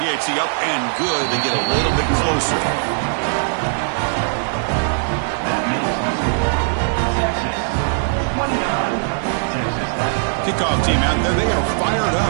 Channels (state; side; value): silent; left; digital silence